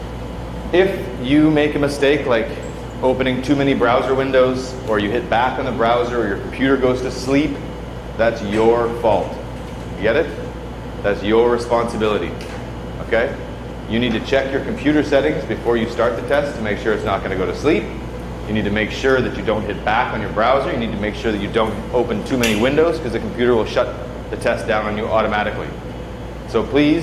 If you make a mistake like opening too many browser windows, or you hit back on the browser, or your computer goes to sleep, that's your fault. You get it? That's your responsibility. Okay? You need to check your computer settings before you start the test to make sure it's not going to go to sleep. You need to make sure that you don't hit back on your browser. You need to make sure that you don't open too many windows, because the computer will shut the test down on you automatically. So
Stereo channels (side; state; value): both; identical; correlation 1.00